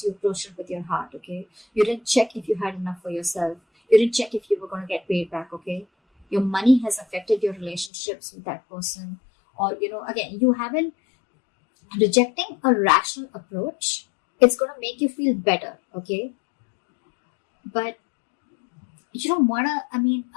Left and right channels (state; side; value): drops out; right; at 7.9 s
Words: You approached it with your heart, okay? You didn't check if you had enough for yourself. You didn't check if you were going to get paid back, okay? Your money has affected your relationships with that person. Or, again, you haven't rejecting a rational approach. It's going to make you feel better, okay? But you don't want to,